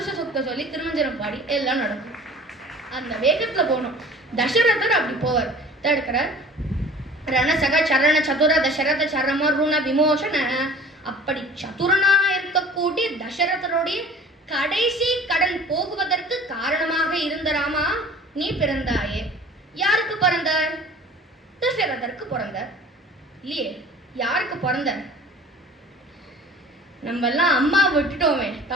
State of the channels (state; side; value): normal; both; correlation 0.45